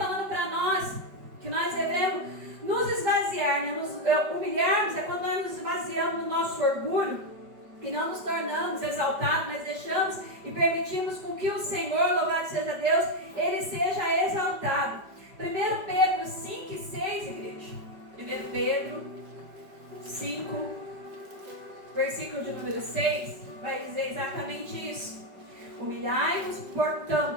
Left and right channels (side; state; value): left; late; 5.1 ms